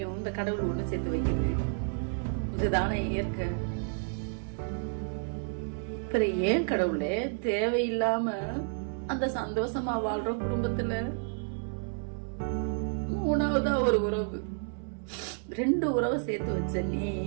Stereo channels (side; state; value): left; silent; 57 dB below the other